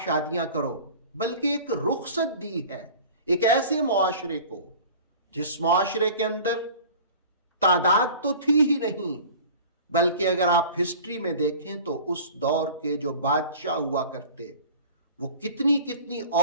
شادیاں کرو، بلکہ ایک رخصت دی ہے ایک ایسے معاشرے کو جس معاشرے کے اندر تعداد تو تھی ہی نہیں، بلکہ اگر آپ ہسٹری میں دیکھیں تو اس دور کے جو بادشاہ ہوا کرتے وہ کتنی کتنی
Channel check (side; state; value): both; inverted; correlation -0.42